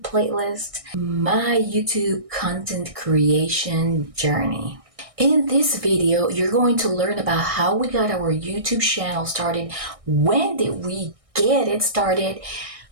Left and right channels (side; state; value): left; late; 1.6 ms